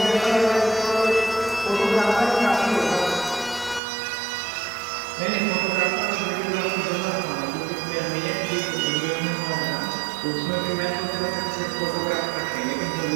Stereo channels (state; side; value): drops out; left; at 3.8 s